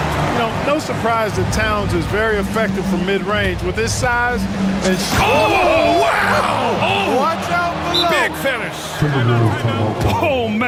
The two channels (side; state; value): both; identical; correlation 1.00